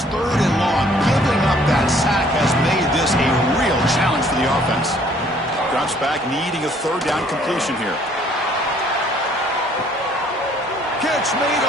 3rd and long. Giving up that sack has made this a real challenge for the offense. Drops back, needing a 3rd down completion here. Catch made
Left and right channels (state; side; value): normal; both; correlation 0.60